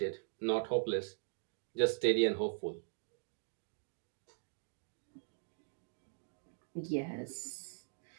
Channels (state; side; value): silent; left; digital silence